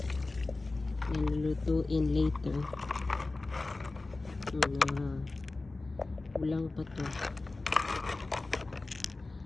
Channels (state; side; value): quieter; right; 3.3 dB